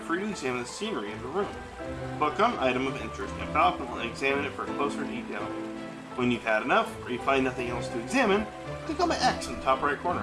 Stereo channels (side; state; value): both; identical; correlation 1.00